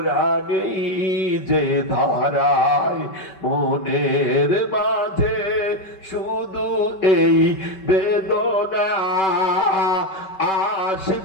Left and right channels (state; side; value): late; right; 5.2 ms